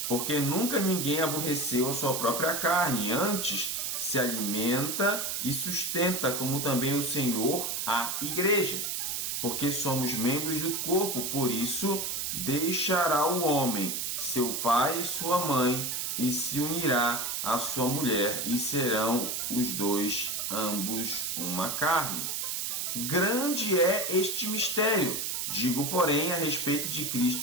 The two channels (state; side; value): noise; right; hiss, 2 dB below the sound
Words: Porque nunca ninguém aborreceu a sua própria carne, antes se alimenta e sustenta, como também o Senhor a igreja. Porque somos membros do corpo, por isso deixará o homem seu pai e sua mãe, e se unirá à sua mulher, e serão os dois ambos uma carne. Grande é este mistério, digo, porém, a respeito de